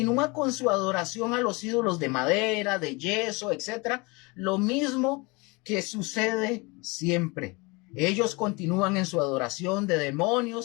con su adoración a los ídolos de madera, de yeso, etcétera. Lo mismo que sucede siempre. Ellos continúan en su adoración de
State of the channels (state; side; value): quieter; right; 26.7 dB